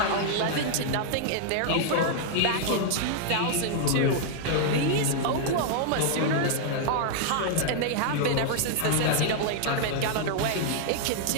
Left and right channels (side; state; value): both; different; correlation -0.01